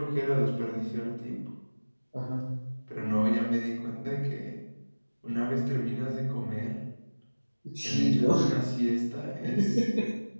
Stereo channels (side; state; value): both; inverted; correlation -1.00